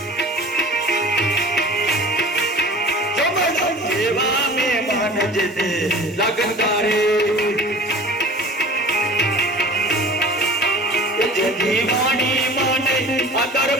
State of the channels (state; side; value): normal; both; correlation 0.41